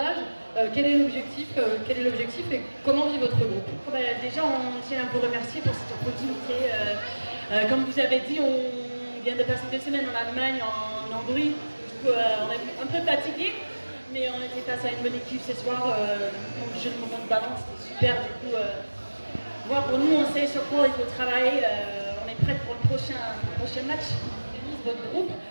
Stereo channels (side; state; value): both; inverted; correlation -1.00